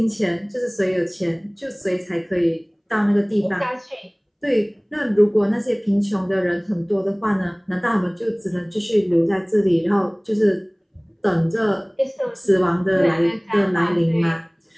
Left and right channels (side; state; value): both; identical; correlation 1.00